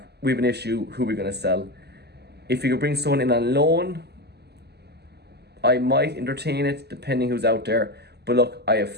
we have an issue. Who are we going to sell? If you could bring someone in on loan, I might entertain it depending who's out there. But look, I have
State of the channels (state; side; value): late; left; 0.48 ms